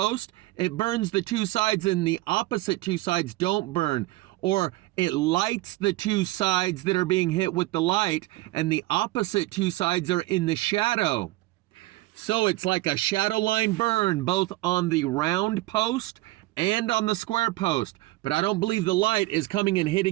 it burns the two sides and the opposite two sides don't burn. Or it lights the two sides that are being hit with the light and the opposite two sides are in the shadow. So it's like a shadow line burn both on the round post and on the square post. But I don't believe the light is coming and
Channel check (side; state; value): left; quieter; 19.3 dB